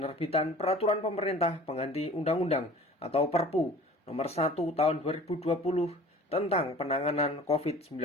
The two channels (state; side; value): normal; both; correlation 0.46